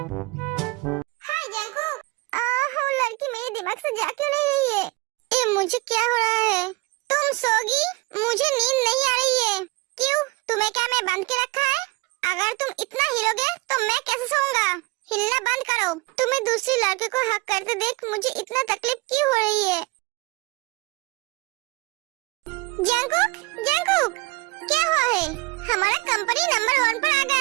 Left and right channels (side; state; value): left; quieter; 23.4 dB